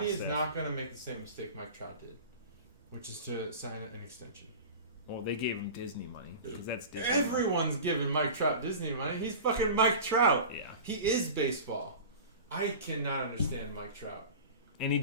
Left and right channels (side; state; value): both; inverted; correlation -0.34